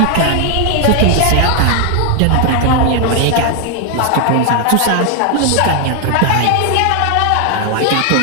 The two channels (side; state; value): both; different; correlation 0.00